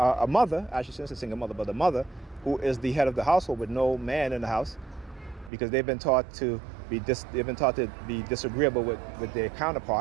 mother, I shouldn't say single mother, but a mother who is the head of the household with no man in the house, because they've been taught to be disagreeable with their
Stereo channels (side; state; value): left; drops out; at 5.5 s